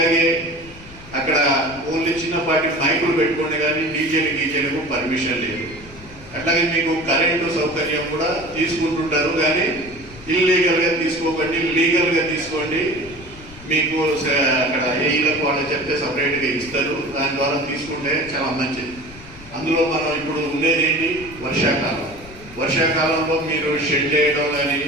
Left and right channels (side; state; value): left; noise; rumble, 18 dB below the sound